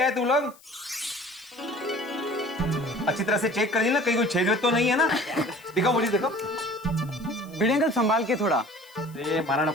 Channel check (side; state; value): left; noise; hiss, 25 dB below the sound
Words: आए तुम लोग। अच्छी तरह से चेक कर ली ना, कहीं कोई छेद तो नहीं है ना? दिखाओ मुझे, दिखाओ। भिड़े अंकल संभाल के थोड़ा। अरे मारा